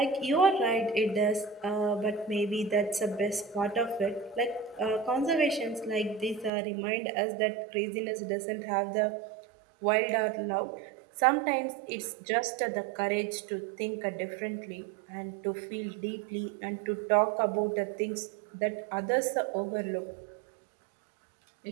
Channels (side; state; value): left; drops out; at 6.5 s